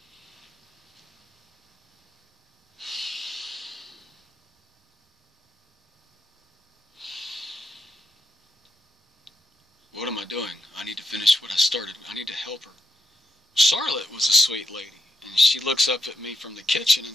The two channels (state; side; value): normal; both; correlation 0.84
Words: what am I doing? finish what I started. I need to help her. Charlotte was a sweet lady, and she looks up at me from the kitchen and